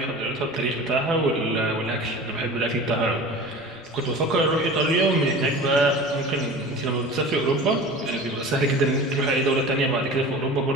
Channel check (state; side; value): noise; right; rumble, 29 dB below the sound